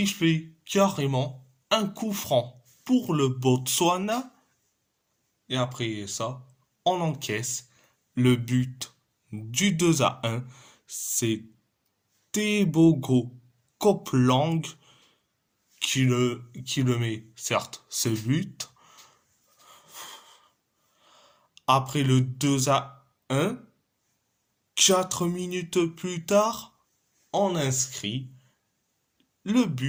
carrément un coup franc pour le Botswana. Et après ça, on encaisse le but du 2-1. C'est Tebogo Copeland qui le met, certes, ce but. Après le 2-1, 4 minutes plus tard, on inscrit le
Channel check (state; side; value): identical; both; correlation 1.00